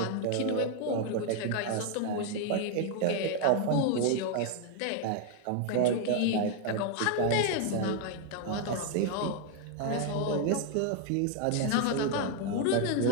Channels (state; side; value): different; both; correlation 0.00